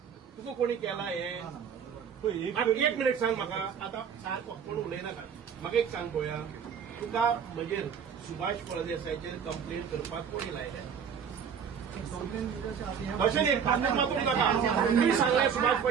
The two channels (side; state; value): left; quieter; 7.3 dB